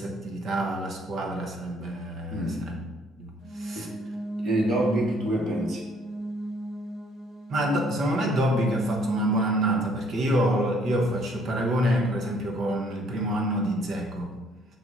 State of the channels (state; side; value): normal; both; correlation 0.63